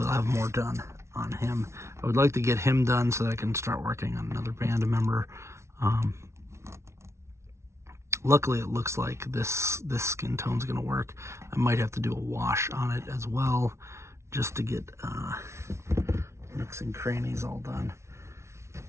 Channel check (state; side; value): late; left; 0.13 ms